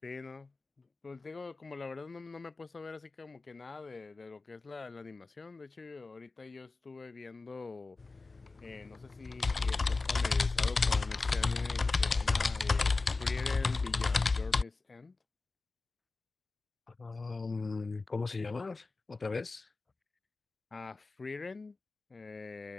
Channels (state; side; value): quieter; right; 3.7 dB